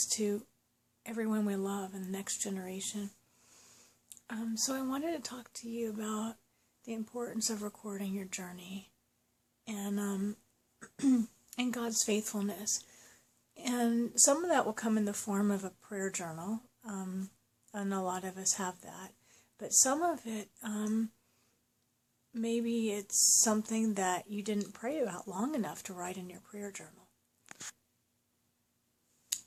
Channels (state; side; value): identical; both; correlation 1.00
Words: to everyone we love in the next generation. So I wanted to talk to you about the importance of recording your journey and and God's faithfulness. And some of that will come in the form of a prayer journal, and a lot of us have that. But some of it, maybe it's something that you didn't pray about long enough to write in your prayer journal.